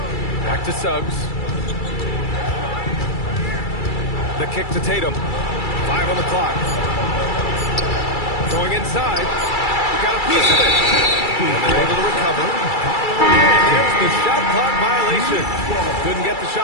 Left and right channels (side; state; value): right; late; 2.3 ms